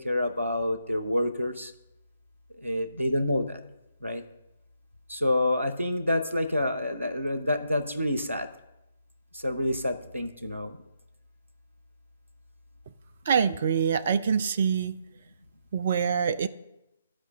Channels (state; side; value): inverted; both; correlation -0.78